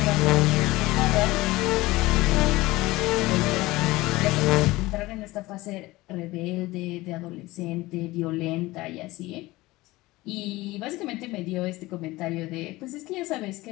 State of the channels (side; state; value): right; quieter; 19.7 dB